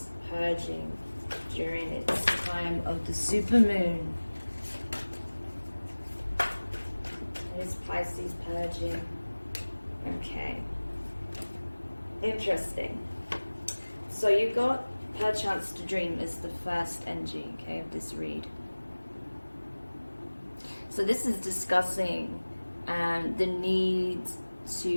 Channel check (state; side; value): inverted; both; correlation -1.00